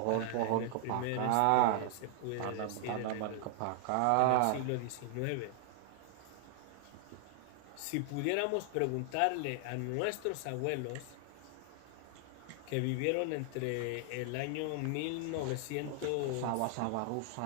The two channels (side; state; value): both; different; correlation 0.00